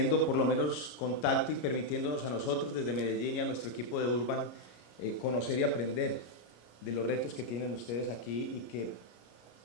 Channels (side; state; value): right; late; 33 ms